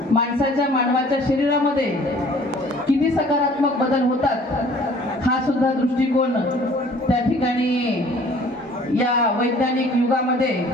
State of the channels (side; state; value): both; normal; correlation 0.53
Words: मानवाच्या शरीरामध्ये किती सकारात्मक बदल होतात हा सुद्धा दृष्टिकोन त्या ठिकाणी या वैज्ञानिक युगामध्ये